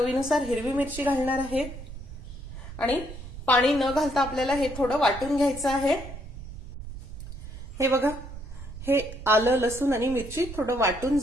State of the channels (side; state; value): right; noise; rumble, 11 dB below the sound